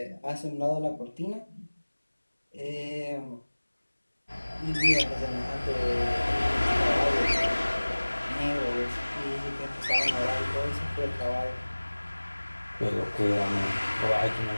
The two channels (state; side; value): inverted; both; correlation -1.00